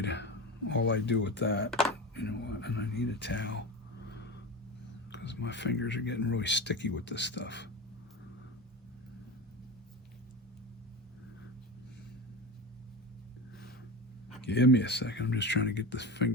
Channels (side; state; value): both; normal; correlation 0.25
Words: all I do with that, you know what, and I need a towel because my fingers are getting really sticky with this stuff. Give me a second. I'm just trying to get this